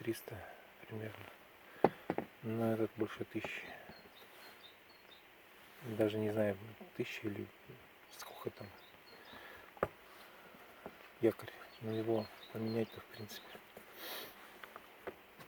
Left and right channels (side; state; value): both; identical; correlation 1.00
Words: примерно. Но этот больше 1000. Даже не знаю, 1000 или сколько там. Якорь. Но его поменять-то в принципе